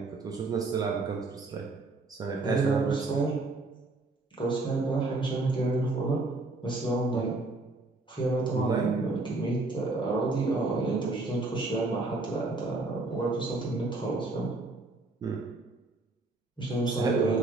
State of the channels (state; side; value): quieter; left; 3.2 dB